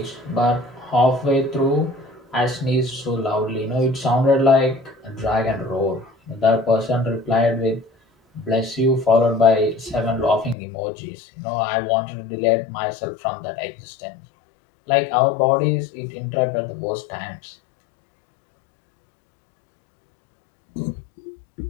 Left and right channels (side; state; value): right; drops out; at 10.6 s